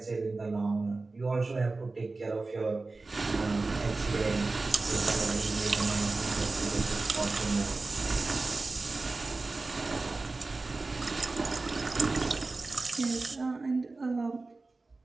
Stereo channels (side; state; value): left; quieter; 3.5 dB